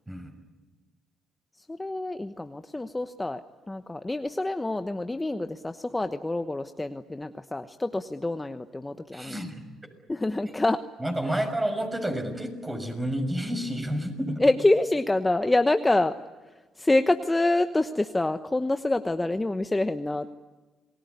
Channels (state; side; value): normal; both; correlation 0.97